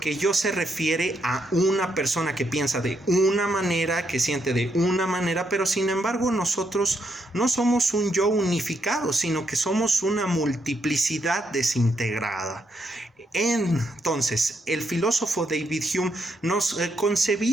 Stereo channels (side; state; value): both; normal; correlation 0.78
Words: yo se refiere a una persona que piensa de una manera, que siente de una manera, pero sin embargo nosotros no somos un yo unificado, sino que somos una multiplicidad desintegrada. Entonces, el filósofo David Hume nos